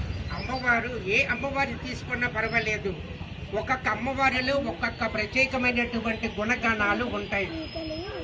అమ్మవారు ఏ అమ్మవారి తీసుకున్నా పర్వాలేదు, ఒక్కొక్క అమ్మవారిలో ఒక్కొక్క ప్రత్యేకమైనటువంటి గుణగణాలు ఉంటాయి.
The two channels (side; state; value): both; identical; correlation 1.00